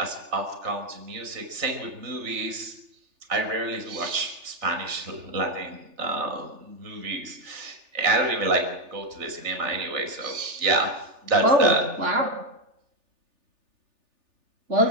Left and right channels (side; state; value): left; late; 3.4 ms